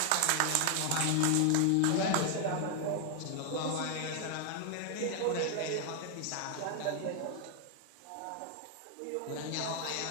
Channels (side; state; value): both; different; correlation 0.00